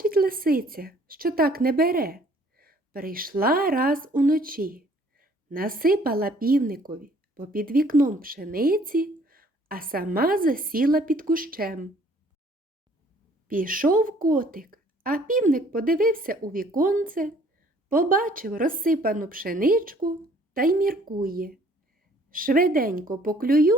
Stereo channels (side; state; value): both; normal; correlation 0.58